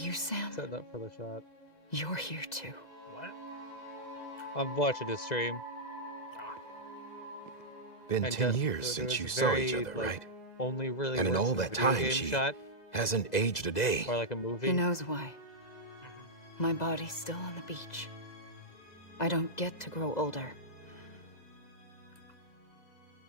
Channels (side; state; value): right; late; 2.0 ms